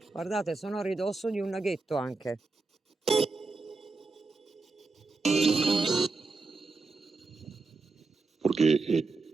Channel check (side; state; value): left; quieter; 3.8 dB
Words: Guardate, sono a ridosso di un laghetto anche. Perché